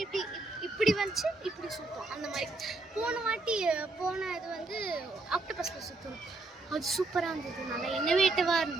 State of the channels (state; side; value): quieter; left; 3.2 dB